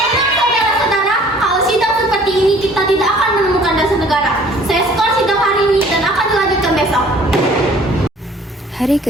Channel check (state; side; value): normal; both; correlation 0.53